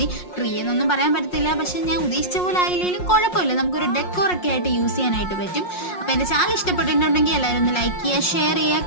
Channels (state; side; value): late; right; 5.6 ms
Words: ട്രീ എന്നൊന്നും പറയാൻ പറ്റത്തില്ല, പക്ഷെ ഞാൻ ഉദ്ദേശിച്ച പോലെ ആയില്ലെങ്കിലും കുഴപ്പമില്ല. നമുക്കൊരു ഡെക്കോറൊക്കെ ആയിട്ട് യൂസ് ചെയ്യാനായിട്ട് പറ്റും. അപ്പോൾ എൻ്റെ ചാനൽ ഇഷ്ടപ്പെട്ടിട്ടുണ്ടെങ്കിൽ എല്ലാവരും ഒന്ന് ലൈക്ക് ചെയ്യുക, ഷെയർ